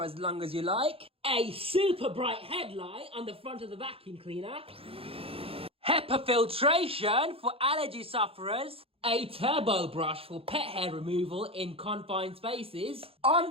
as long as you like, a super bright headlight on the front of the vacuum cleaner, HEPA filtration for allergy sufferers, a turbo brush for pet hair removal in confined spaces,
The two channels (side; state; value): left; late; 0.27 ms